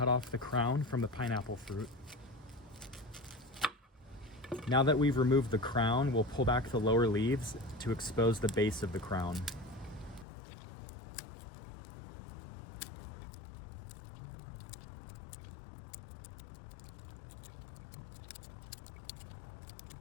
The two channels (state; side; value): drops out; right; at 10.2 s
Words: off the crown from the pineapple fruit. Now that we've removed the crown, we'll pull back the lower leaves to expose the base of the crown.